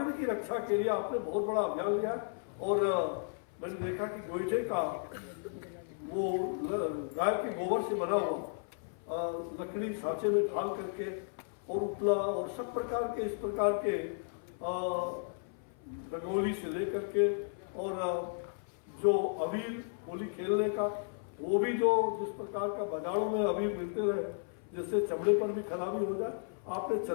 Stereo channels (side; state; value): right; silent; 55 dB below the other